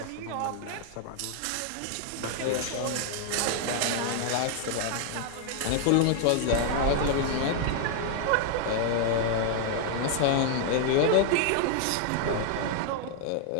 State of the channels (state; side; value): different; both; correlation 0.00